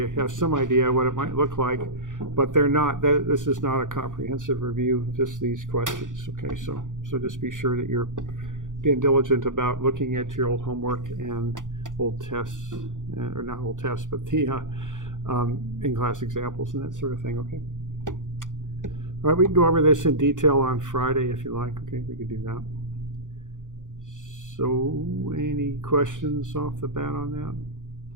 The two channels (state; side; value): late; left; 0.88 ms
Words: have some idea what it might look like, but they're not, this is not a comprehensive review, just these questions. Okay, so just be sure that you're being diligent about looking at your old homework and old tests, or not old tests, but the in-class examples and that sort of thing. Okay. All right, we can go over this in detail on Friday if you like. Okay, we can do that. So, any questions off the bat on that?